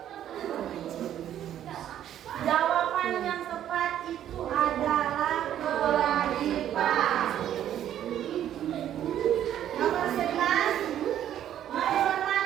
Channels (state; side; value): quieter; left; 11.0 dB